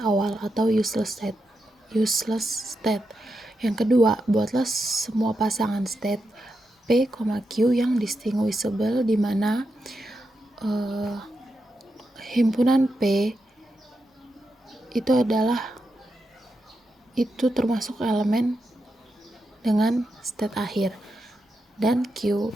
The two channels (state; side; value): normal; both; correlation 0.86